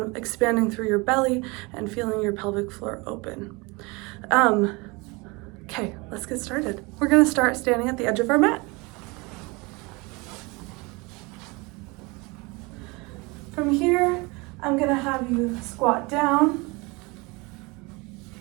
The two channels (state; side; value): quieter; left; 26.3 dB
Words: expanding through your belly and feeling your pelvic floor open. Okay, let's get started. We're going to start standing at the edge of our mat. From here, I'm going to have you squat down.